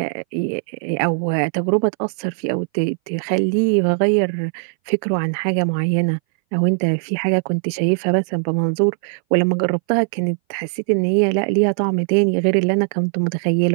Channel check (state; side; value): silent; left; 61 dB below the other